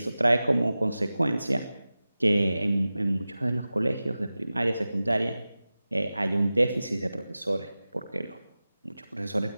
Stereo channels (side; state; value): both; inverted; correlation -0.96